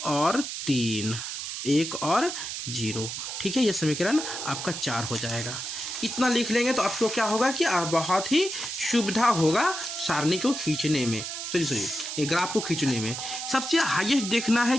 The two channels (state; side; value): noise; right; hiss, 6 dB below the sound